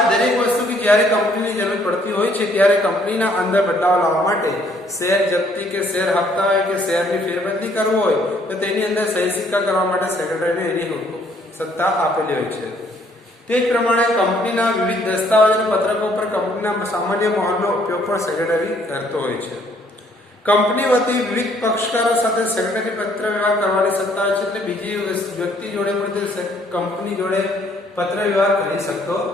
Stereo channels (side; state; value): both; normal; correlation 0.64